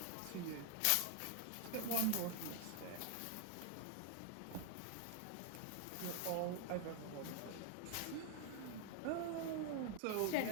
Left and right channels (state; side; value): different; both; correlation 0.00